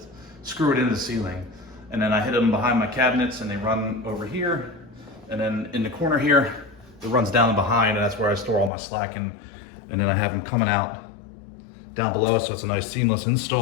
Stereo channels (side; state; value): right; drops out; at 8.7 s